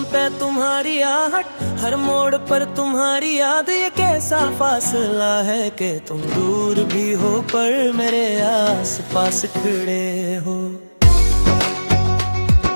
पे तुम्हारी आहट, हर मोड़ पर तुम्हारी याद, ये कैसा फासला है कि तुम दूर भी हो पर मेरे आस पास खड़े हो।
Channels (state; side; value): inverted; both; correlation -1.00